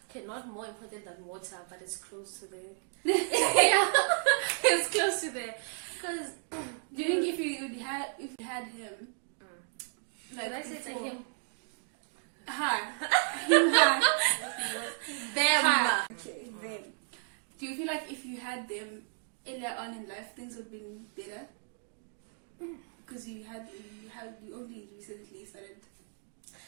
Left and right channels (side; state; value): left; silent; 56 dB below the other